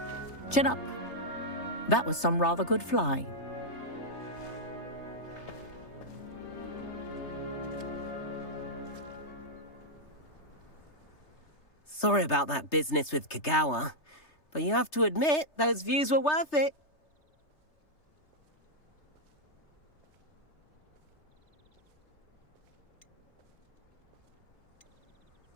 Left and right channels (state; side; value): late; right; 3.3 ms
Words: Chin up. That was some rather good flying. Sorry about that business with Kagawa, but you have to admit, those views were worth it.